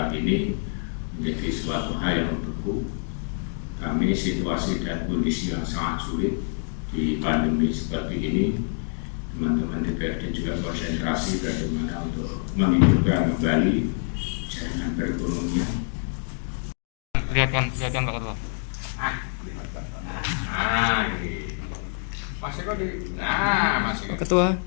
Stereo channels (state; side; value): silent; right; 61 dB below the other